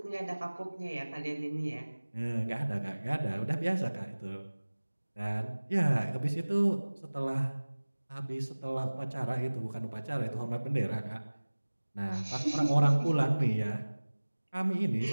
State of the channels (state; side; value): inverted; both; correlation -1.00